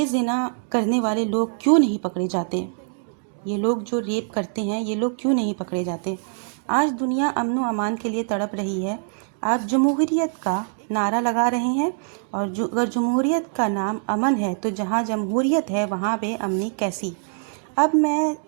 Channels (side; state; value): left; silent; digital silence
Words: زنا کرنے والے لوگ کیوں نہیں پکڑے جاتے؟ یہ لوگ جو ریپ کرتے ہیں یہ لوگ کیوں نہیں پکڑے جاتے؟ آج دنیا امن و امان کے لیے تڑپ رہی ہے۔ آپ جمہوریت کا نعرہ لگا رہے ہیں، اور اگر جمہوریت کا نام امن ہے تو جہاں جمہوریت ہے وہاں بے امنی کیسی؟ اب میں